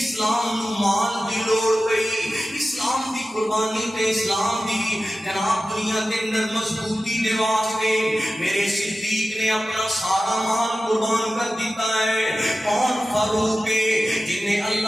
نو مال دی لوڑ پئی، اسلام دی قربانی تے اسلام دی جناب دنیا دے اندر مضبوطی دے واسطے میرے صدیق نے اپنا سارا مال قربان کر دیتا ہے۔ کون فاروق ہے جن نے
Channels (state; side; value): normal; both; correlation 0.94